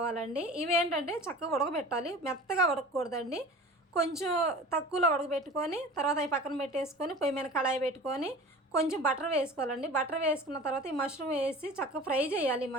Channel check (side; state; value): both; normal; correlation 0.39